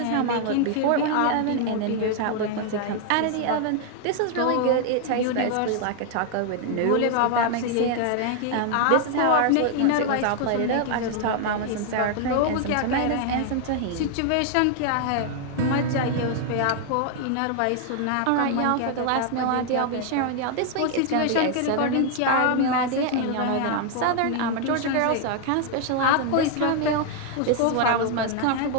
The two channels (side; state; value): both; different; correlation 0.00